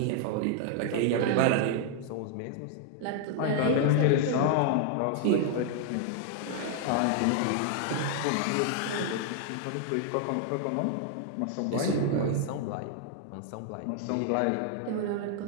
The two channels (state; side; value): different; both; correlation 0.00